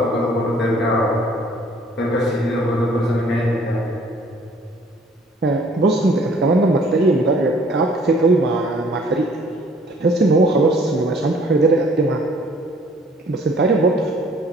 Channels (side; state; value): both; normal; correlation 0.57